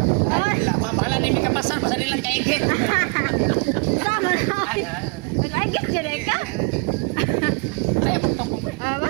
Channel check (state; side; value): quieter; left; 33.5 dB